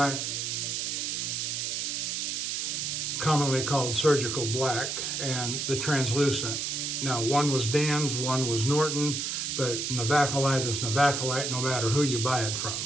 commonly called surgical black, and the translucent. Now, one was Dan's, one was Norton, but Navacolite is Navacolite no matter who you buy it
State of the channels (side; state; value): right; noise; hiss, 2 dB below the sound